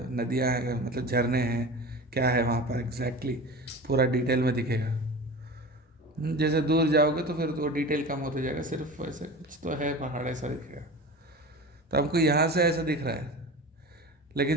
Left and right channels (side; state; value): both; normal; correlation 0.33